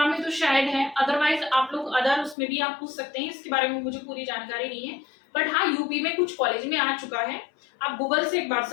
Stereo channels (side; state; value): right; drops out; at 2.4 s